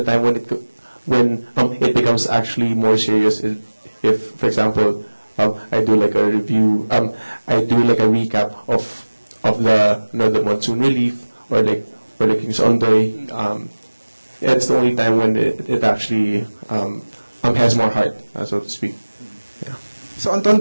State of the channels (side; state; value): both; inverted; correlation -1.00